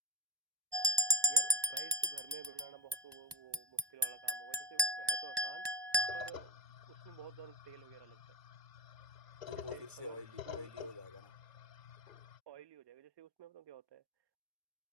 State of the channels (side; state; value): left; late; 1.1 ms